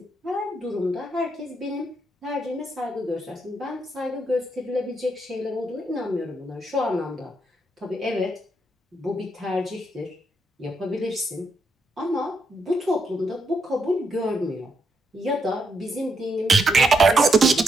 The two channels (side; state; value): both; normal; correlation 0.79